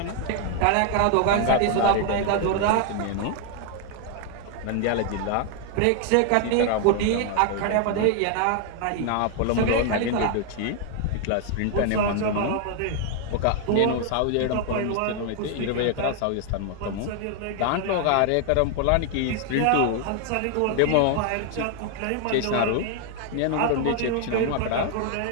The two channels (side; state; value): both; different; correlation 0.00